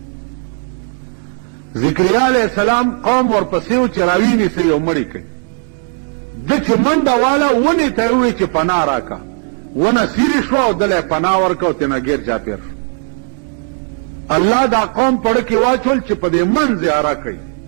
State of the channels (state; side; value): silent; left; 55 dB below the other